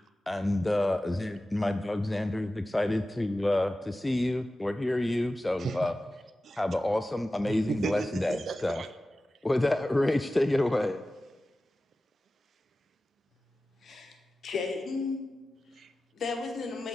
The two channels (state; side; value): normal; both; correlation 0.95